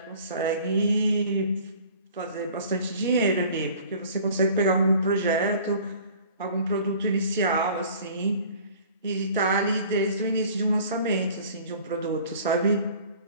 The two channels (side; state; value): both; inverted; correlation -0.49